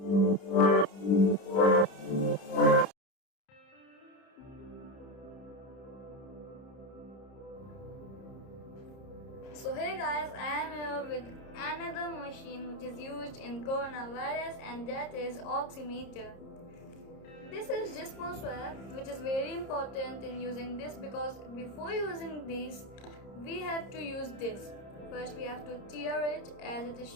hey guys, I am here with another machine which is used in coronavirus, and that is Oximeter. This is just for swab, which is very important in using this, because before using this we have to use this. First we have to tear it as it is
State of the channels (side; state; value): right; late; 30 ms